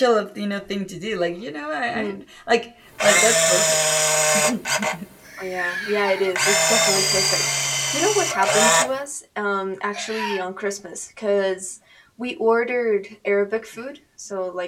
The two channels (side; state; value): both; identical; correlation 1.00